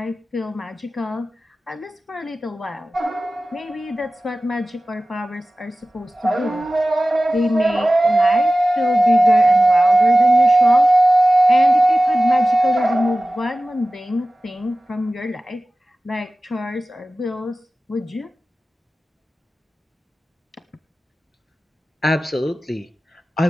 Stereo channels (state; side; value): normal; both; correlation 0.96